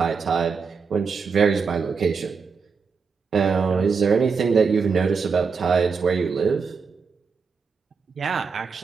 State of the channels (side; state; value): left; quieter; 5.3 dB